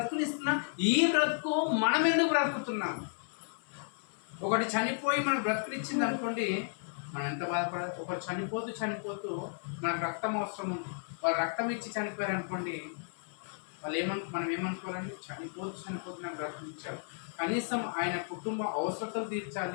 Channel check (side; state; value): right; silent; 55 dB below the other